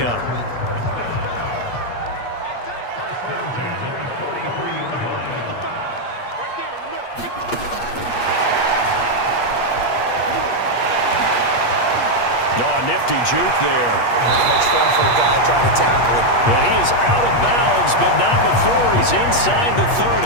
Nifty juke there. Not much fun for a guy trying to tackle it. And he is out of bounds, but not before he's inside the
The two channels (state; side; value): late; right; 8.4 ms